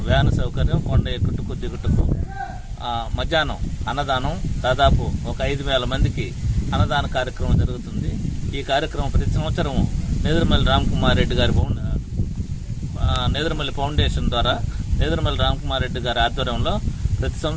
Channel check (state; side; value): identical; both; correlation 1.00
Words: వ్యాన్ సౌకర్యం, కొండ ఎక్కుటకు దిగుటకు, మధ్యాహ్నం అన్నదానం, దాదాపు ఒక 5,000 మందికి అన్నదాన కార్యక్రమం జరుగుతుంది. ఈ కార్యక్రమం ప్రతి సంవత్సరం నేదురుమల్లి రామకుమార్ రెడ్డి గారి నేదురుమల్లి ఫౌండేషన్ ద్వారా నేదురుమల్లి రామకుమార్ రెడ్డి గారి ఆధ్వర్యంలో ప్రతి